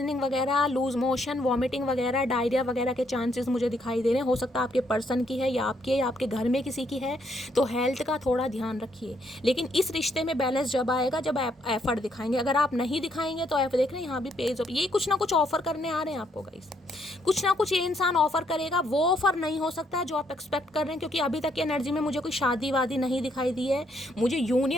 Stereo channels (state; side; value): normal; both; correlation 0.72